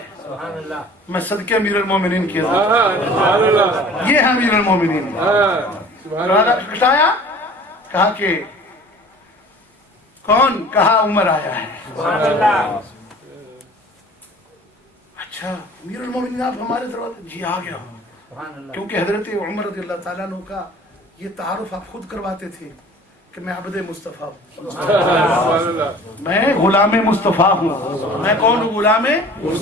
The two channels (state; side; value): normal; both; correlation 0.46